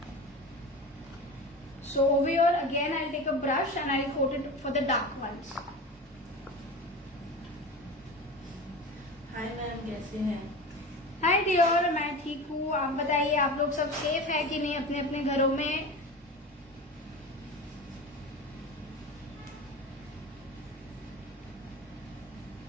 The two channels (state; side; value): normal; both; correlation 0.30